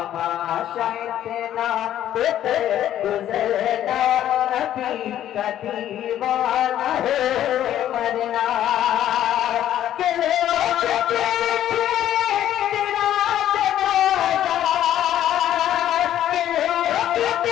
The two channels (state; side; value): quieter; right; 11.6 dB